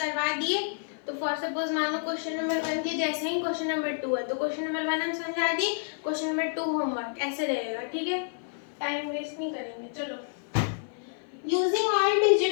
दिए तो फॉर सपोज मानो क्वेश्चन नंबर 1 के जैसे ही क्वेश्चन नंबर 2 है तो क्वेश्चन नंबर 1 हम समझा दिए, क्वेश्चन नंबर 2 होमवर्क, ऐसे रहेगा। ठीक है, टाइम वेस्ट नहीं करेंगे। चलो, using all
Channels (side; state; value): right; silent; 55 dB below the other